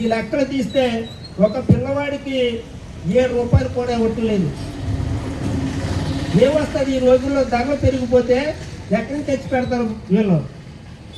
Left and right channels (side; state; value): both; identical; correlation 1.00